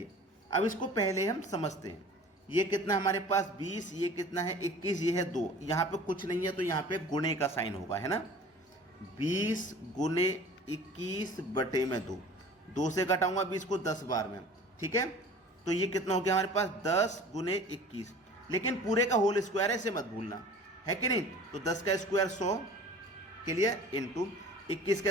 अब इसको पहले हम समझते हैं। ये कितना हमारे पास 20, ये कितना है 21, ये है 2, यहाँ पे कुछ नहीं है तो यहाँ पे गुणे का साइन होगा, है ना। 20 गुने 21 बटे में 2, 2 से घटाऊंगा 20 को 10 बार में, ठीक है। तो ये कितना हो गया हमारे पास 10 गुने 21, लेकिन पूरे का होल स्क्वायर है, इसे मत भूलना, है कि नहीं। तो 10 का स्क्वायर 100 के लिए इंटू 21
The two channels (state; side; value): normal; both; correlation 0.44